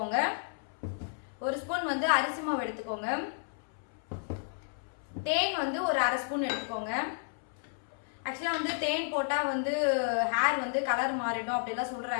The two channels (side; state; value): right; silent; 56 dB below the other